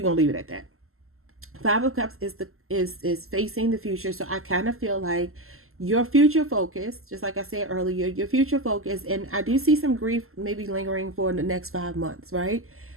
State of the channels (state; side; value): late; left; 0.62 ms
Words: going to leave it at that. 5 of Cups is facing the future. So I kind of feel like your future focus, just like I said earlier, your future focus, and I do see some grief maybe lingering for the next 5 months, right?